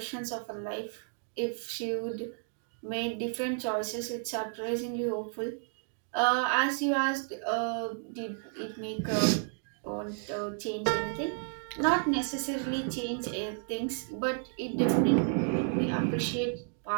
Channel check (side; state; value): left; silent; 56 dB below the other